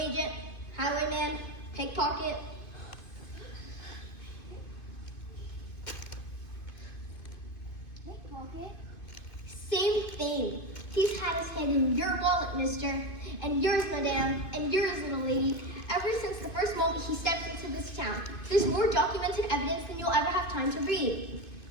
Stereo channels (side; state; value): right; late; 2.5 ms